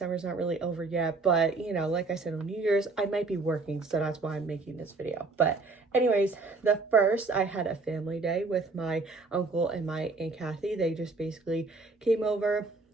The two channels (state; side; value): quieter; left; 3.8 dB